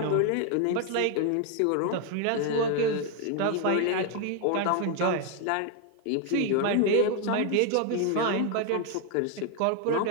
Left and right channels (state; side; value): different; both; correlation 0.00